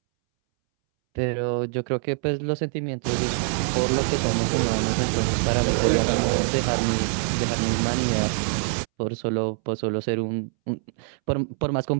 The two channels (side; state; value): left; silent; 62 dB below the other